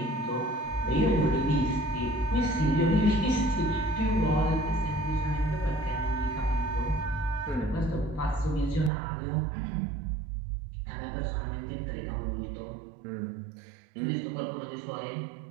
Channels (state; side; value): drops out; left; at 8.9 s